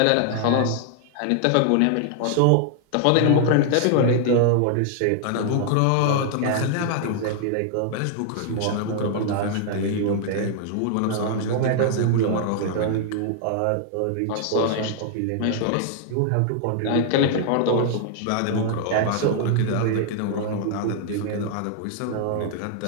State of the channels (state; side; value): different; both; correlation 0.00